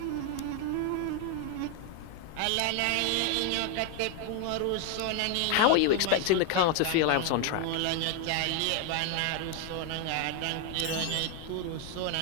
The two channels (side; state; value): both; different; correlation 0.00